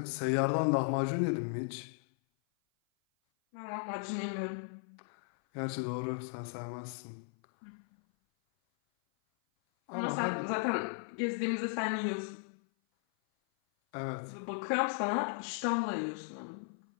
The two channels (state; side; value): silent; right; 54 dB below the other